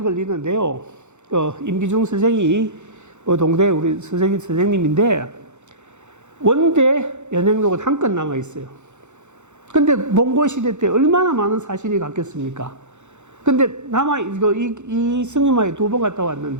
걸리는데요. 임기중 선생이 동대 우리 선생님인데 원대 연행록은 한 건 남아 있어요. 근데 몽골 시대 때 얼마나 많은 사신이 갔겠습니까? 근데 이 승림하에 2번 갔다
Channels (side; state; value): left; late; 0.83 ms